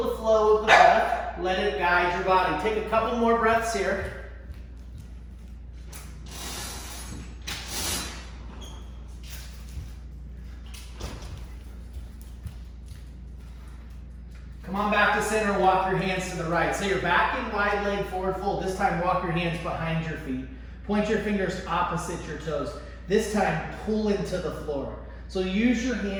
the flow of the breath. Let it guide your body. Take a couple more breaths here. Come on back to center, walk your hands to the right. So you're back in wide leg forward fold. This time walk your hands behind your feet. Point your fingers opposite your toes. This time pull into the floor. So use your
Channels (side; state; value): both; identical; correlation 1.00